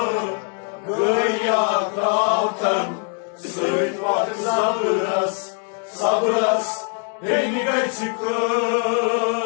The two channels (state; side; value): quieter; right; 39.7 dB